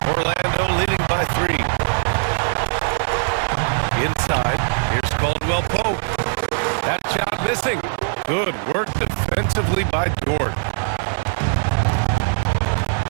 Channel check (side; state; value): left; silent; 65 dB below the other